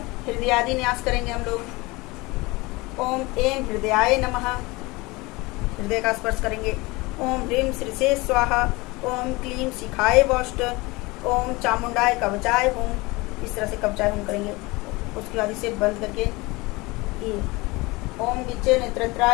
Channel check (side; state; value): right; quieter; 23.3 dB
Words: हृदयादि न्यास करेंगे हम लोग। ओम एम हृदयाय नमः, हृदय का स्पर्श करेंगे। ओम ह्रीम श्रीसे स्वाहा, ओम क्लीम शिखाय वौष्ट, ओम चामुंडाय कवचाय हुम, इस तरह से कवचाय हुम करेंगे। उसके बाद इसे बंद करके ये ओम विच्चे